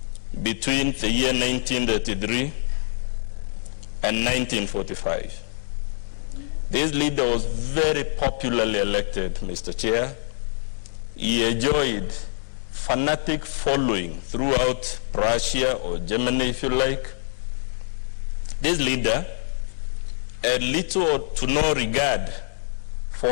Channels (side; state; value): right; silent; 62 dB below the other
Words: between the year 1933 and 1945. This leader was very popularly elected, Mr. Chair. He enjoyed fanatic following throughout Prussia or Germany, if you like. This leader had little to no regard for